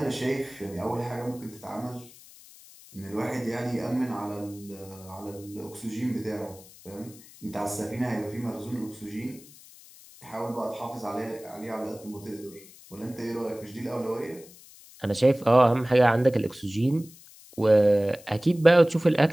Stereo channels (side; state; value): left; noise; hiss, 21 dB below the sound